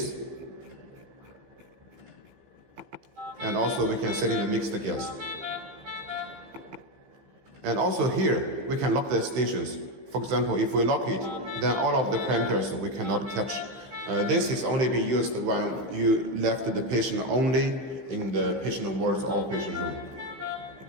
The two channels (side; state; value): left; late; 15 ms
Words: And also we can set in the mixed gas. And also here, we can lock the stations. For example, if we lock it, then all of the parameters we cannot touch. This is only being used when you left the patient only in the patient wards or patient room.